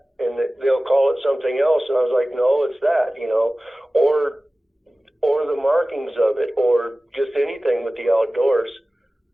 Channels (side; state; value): both; normal; correlation 0.97